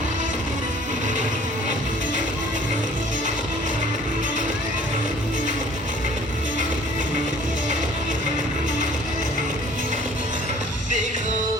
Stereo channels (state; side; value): normal; both; correlation 0.53